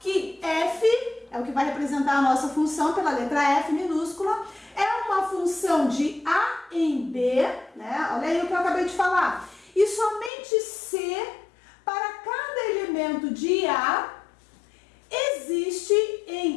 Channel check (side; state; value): right; drops out; at 10.3 s